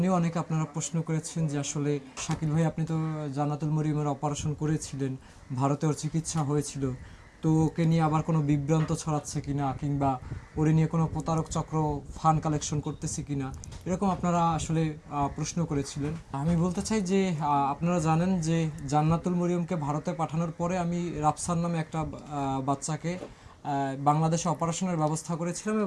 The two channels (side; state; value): both; identical; correlation 1.00